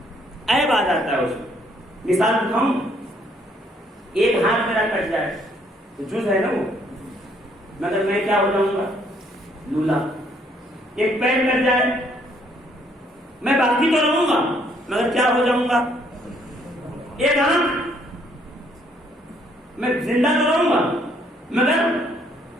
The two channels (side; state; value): both; normal; correlation 0.67